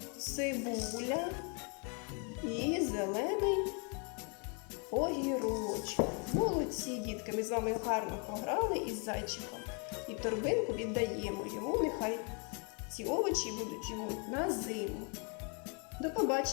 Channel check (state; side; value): quieter; right; 36.4 dB